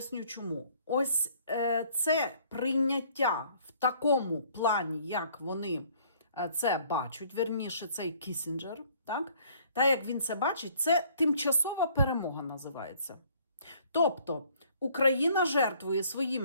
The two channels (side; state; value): both; inverted; correlation -0.59